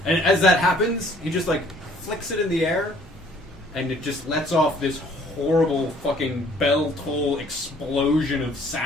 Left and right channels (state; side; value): normal; both; correlation 0.58